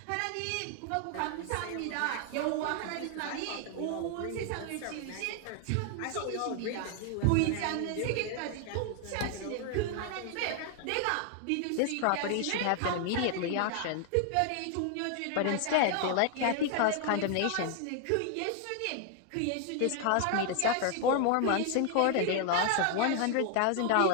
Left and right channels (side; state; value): both; different; correlation 0.00